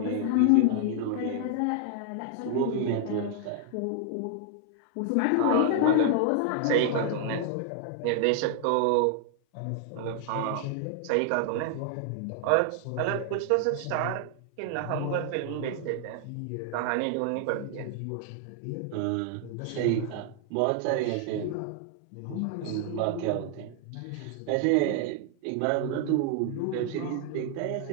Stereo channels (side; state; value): both; different; correlation 0.00